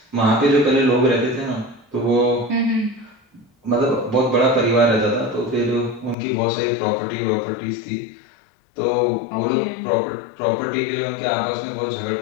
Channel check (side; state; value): right; drops out; at 6.2 s